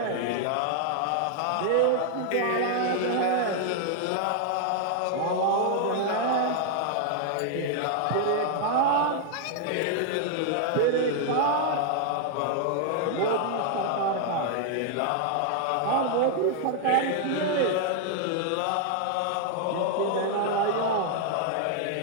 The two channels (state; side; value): different; both; correlation 0.00